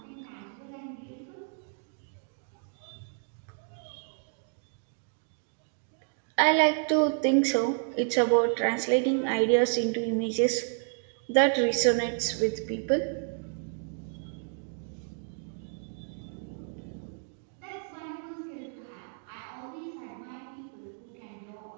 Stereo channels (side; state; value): left; silent; 57 dB below the other